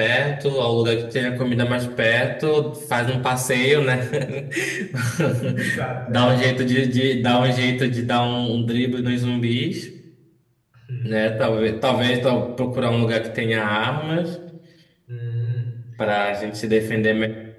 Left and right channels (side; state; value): both; identical; correlation 1.00